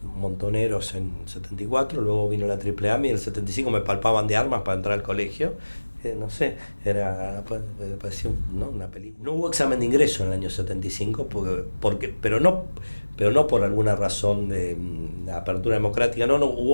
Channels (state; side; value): inverted; both; correlation -1.00